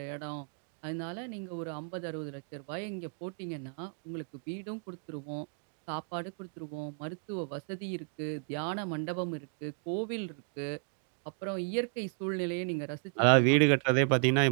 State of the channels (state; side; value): silent; left; 55 dB below the other